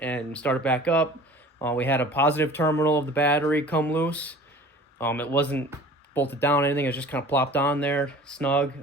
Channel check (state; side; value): normal; both; correlation 0.44